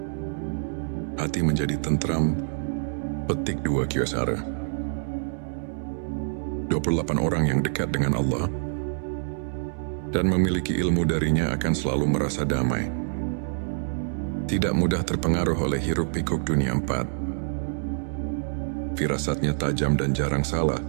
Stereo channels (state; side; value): silent; left; 61 dB below the other